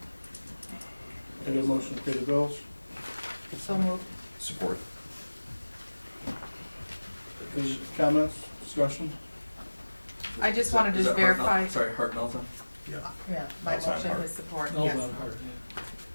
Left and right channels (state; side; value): inverted; both; correlation -1.00